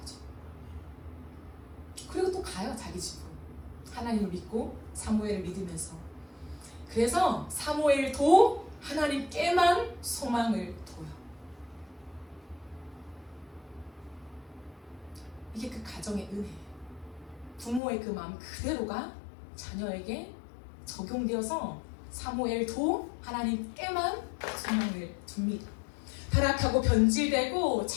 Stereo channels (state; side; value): drops out; right; at 17.8 s